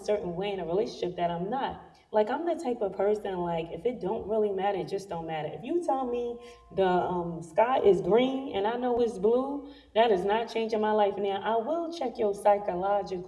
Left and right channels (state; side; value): identical; both; correlation 1.00